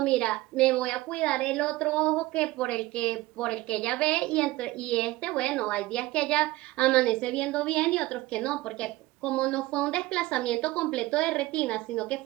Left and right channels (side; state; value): left; quieter; 18.8 dB